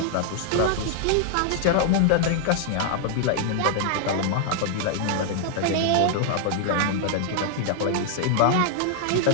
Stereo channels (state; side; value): different; both; correlation 0.00